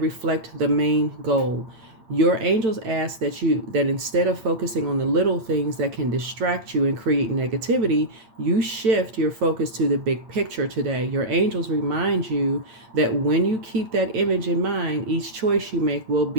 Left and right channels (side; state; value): left; late; 8.8 ms